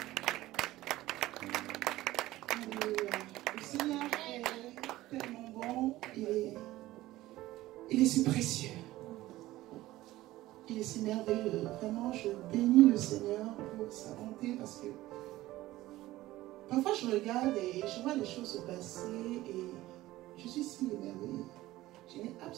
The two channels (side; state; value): left; quieter; 16.7 dB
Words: Alléluia. Le Seigneur est tellement bon et il est si précieux. Il est si merveilleux. Vraiment, je bénis le Seigneur pour sa bonté parce que parfois je regarde et je vois les choses se passer et je suis si émerveillée. Je n'ai